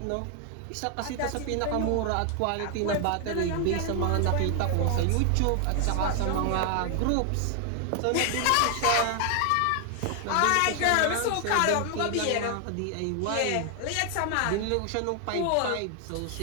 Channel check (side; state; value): both; different; correlation 0.00